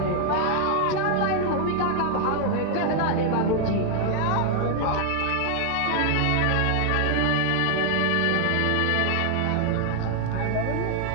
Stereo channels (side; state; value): both; different; correlation 0.00